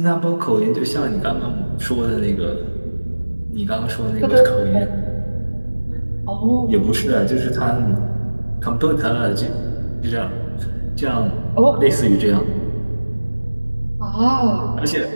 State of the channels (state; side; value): inverted; both; correlation -1.00